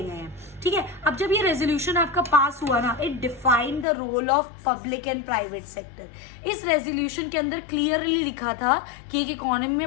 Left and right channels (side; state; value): right; drops out; at 3.9 s